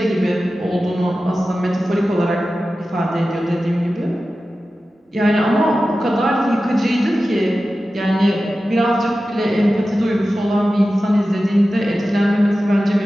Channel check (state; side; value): normal; both; correlation 0.94